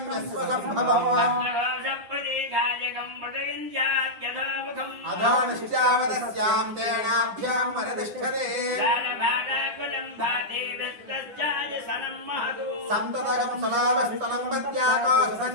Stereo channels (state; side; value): late; left; 9.7 ms